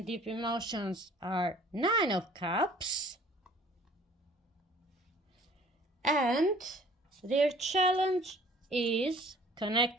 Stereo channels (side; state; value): both; normal; correlation 0.52